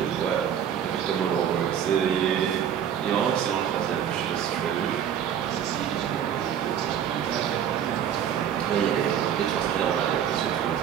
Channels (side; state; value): left; quieter; 9.1 dB